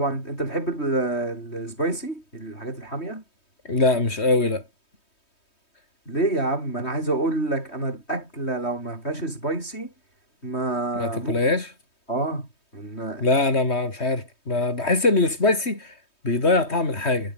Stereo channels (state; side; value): late; right; 3.2 ms